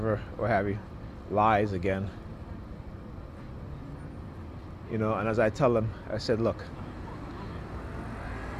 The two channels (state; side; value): identical; both; correlation 1.00